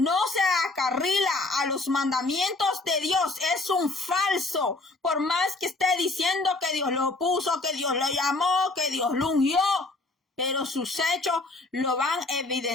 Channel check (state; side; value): quieter; right; 3.2 dB